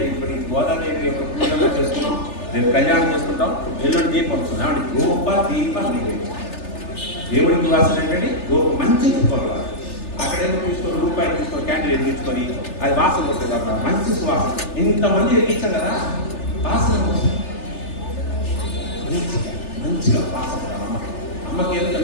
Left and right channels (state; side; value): late; right; 3.4 ms